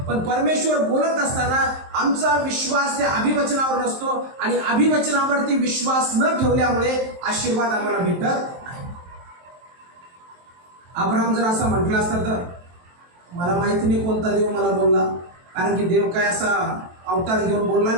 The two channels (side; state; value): left; late; 23 ms